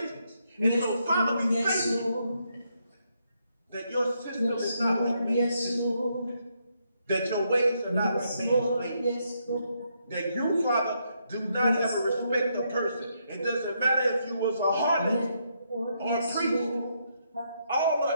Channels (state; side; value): inverted; both; correlation -0.77